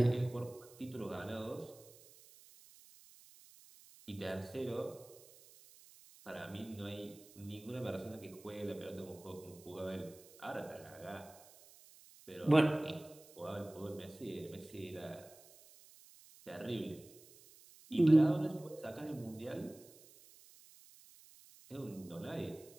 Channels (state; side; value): noise; right; hiss, 22 dB below the sound